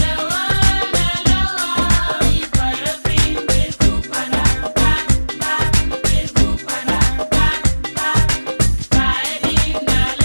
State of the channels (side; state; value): both; inverted; correlation -1.00